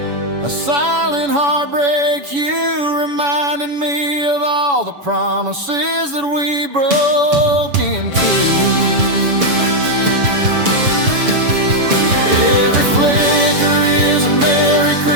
a silent heartbreak. You reminded me of all the promises that we broke into. Every flicker is a Merry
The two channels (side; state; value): left; late; 7.0 ms